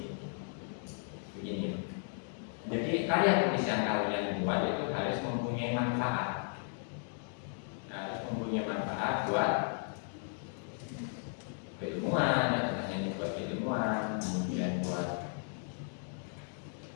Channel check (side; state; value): right; silent; 54 dB below the other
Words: begini. Jadi karya tulis yang kalian buat itu harus mempunyai manfaat. Harus mempunyai manfaat buat keilmuan, ya, hanya buat keilmuan, kemudian buat